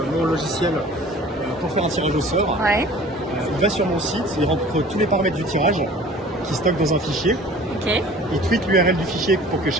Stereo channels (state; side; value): normal; both; correlation 0.46